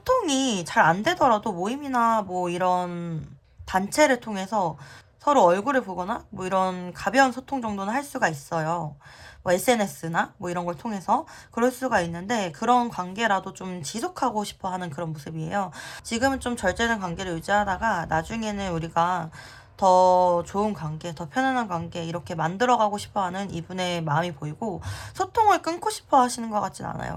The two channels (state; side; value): identical; both; correlation 1.00